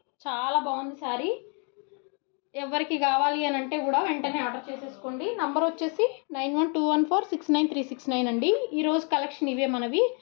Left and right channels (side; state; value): right; quieter; 38.2 dB